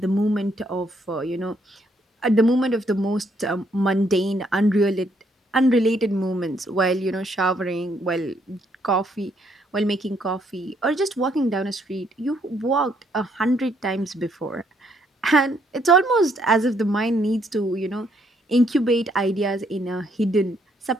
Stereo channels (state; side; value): normal; both; correlation 0.71